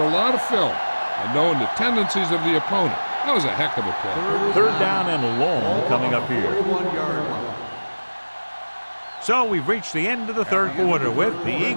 a lot of film and knowing the tendencies of the opponent. That was a heck of a play. 3rd down and long coming up here. 41-yard line. So we've reached the end of the 3rd quarter with the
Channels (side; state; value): both; inverted; correlation -1.00